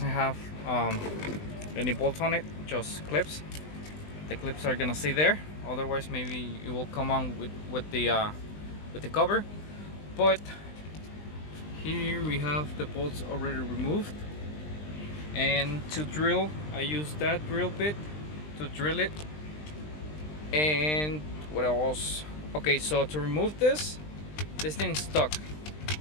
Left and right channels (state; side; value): late; right; 20 ms